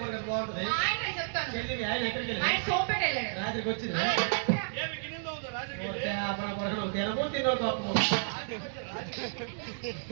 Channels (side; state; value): left; silent; digital silence